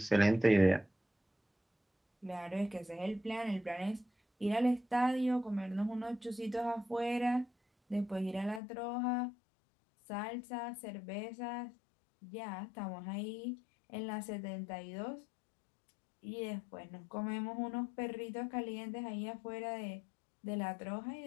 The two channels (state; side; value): drops out; right; at 8.6 s